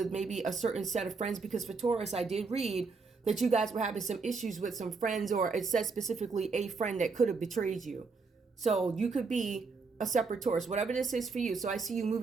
maybe a certain set of friends, because for Taurus, I did read that you guys were having some issues with some friends, or it says specifically a friend that could have betrayed you. So you could be a separate Taurus, whatever this is for you. So I see you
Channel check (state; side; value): quieter; left; 4.5 dB